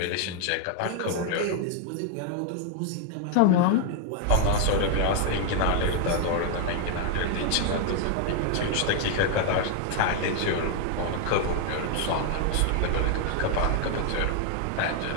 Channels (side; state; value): both; different; correlation 0.00